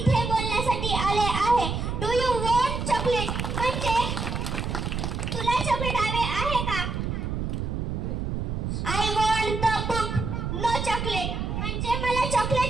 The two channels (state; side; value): noise; right; rumble, 2 dB below the sound